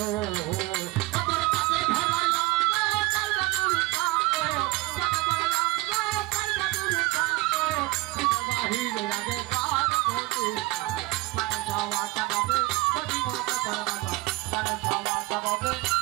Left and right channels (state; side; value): quieter; left; 20.9 dB